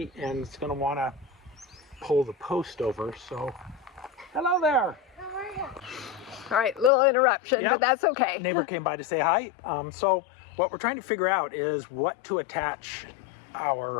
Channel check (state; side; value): drops out; right; at 6.9 s